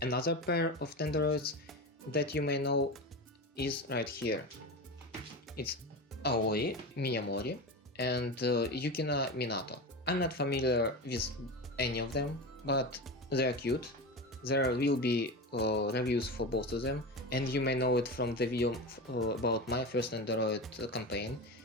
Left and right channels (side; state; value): both; normal; correlation 0.24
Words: Another pair of Nendoroids that you may know is right here. It's Aoi Miyamori and Yukina Minato. I'm not familiar with any of them, but they're cute. There will be reviews for both of them, and you may know it from the video about my first Nendoroid campaign,